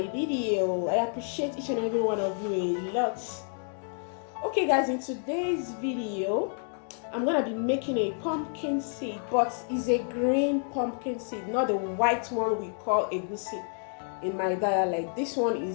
video. I appreciate each and every one of you a lot. Okay guys, in today's video I'm gonna be making a pumpkin seed, but it's a green pumpkin seed, not the white one we call egusi in my dialect. This one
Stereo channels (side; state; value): right; silent; 58 dB below the other